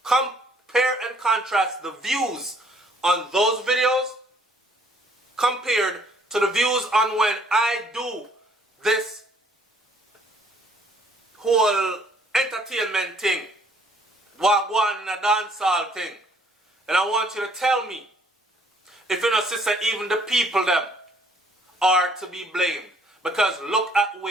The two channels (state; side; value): normal; both; correlation 0.62